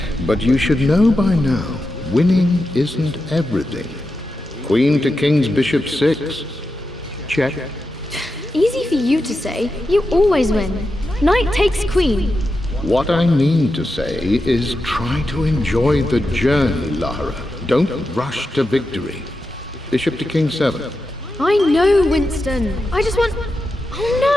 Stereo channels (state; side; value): normal; both; correlation 0.89